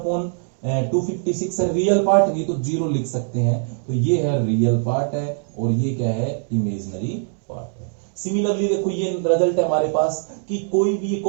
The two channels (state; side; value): silent; left; 59 dB below the other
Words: है, रियल पार्ट नहीं तो 0 लिख सकते हैं। तो ये है रियल पार्ट है और ये क्या है इमेजिनरी पार्ट है। सिमिलरली देखो ये रिजल्ट है हमारे पास कि कोई भी